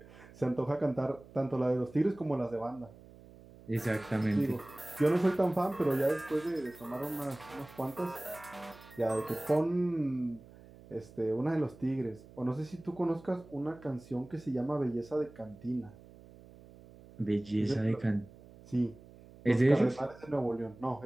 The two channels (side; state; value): right; noise; hum, 21 dB below the sound